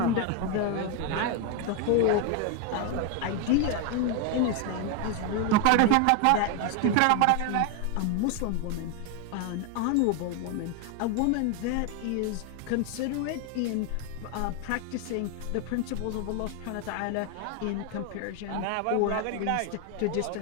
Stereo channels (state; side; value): different; both; correlation 0.01